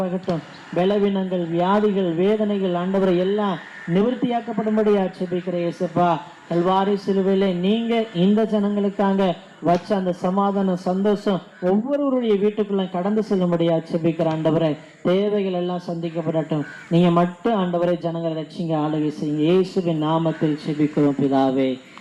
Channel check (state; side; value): identical; both; correlation 1.00